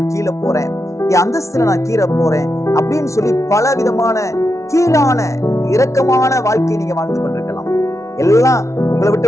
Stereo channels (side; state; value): right; late; 0.14 ms